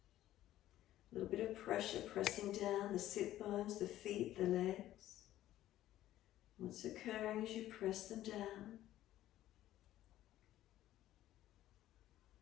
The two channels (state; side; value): quieter; right; 13.7 dB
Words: A little bit of pressure pressing down the sit bones, the feet, the legs. What's occurring as you press them down?